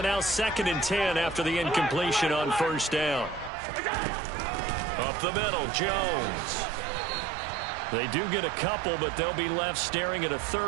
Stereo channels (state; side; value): drops out; left; at 3.5 s